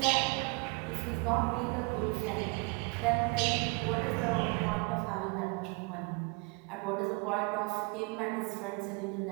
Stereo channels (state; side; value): quieter; left; 29.9 dB